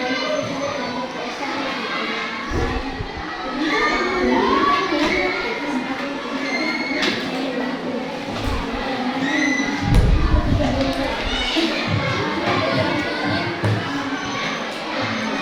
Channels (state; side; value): identical; both; correlation 1.00